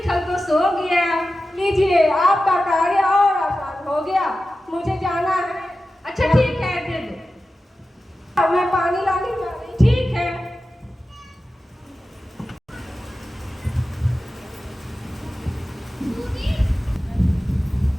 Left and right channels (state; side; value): normal; both; correlation 0.93